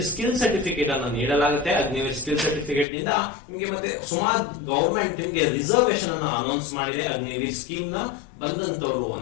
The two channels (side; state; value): right; drops out; at 2.9 s